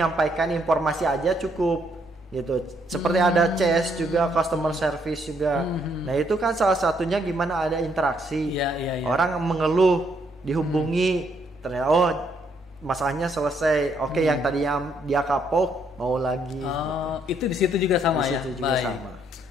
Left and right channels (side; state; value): both; normal; correlation 0.71